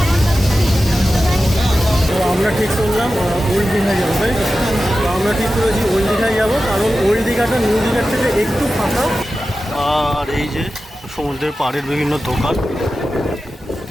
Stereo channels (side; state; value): both; normal; correlation 0.93